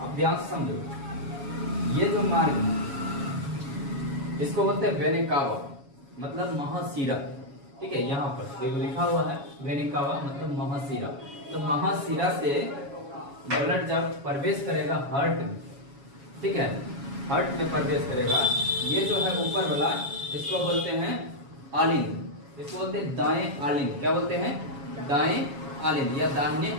ध्यान से समझो, ये जो मार्ग है इसको बोलते हैं वेना कावा, मतलब महाशिरा। ठीक है, यहाँ पर देखो लिखा हुआ है वेना कावा मतलब महाशिरा। तो महाशिरा से ब्लड जब प्रवेश करेगा हार्ट में, ठीक है, हार्ट में प्रवेश करेगा, ये जो है ऊपर वाला इसको बोलते हैं आलिंद, इसको बोलते हैं दाएं आलिंद। क्या बोलते हैं? दाएं आलिंद या दाहिने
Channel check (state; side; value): late; left; 7.2 ms